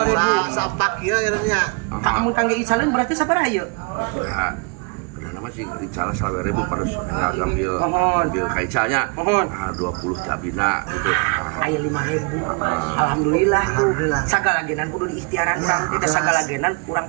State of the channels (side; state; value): left; quieter; 33.2 dB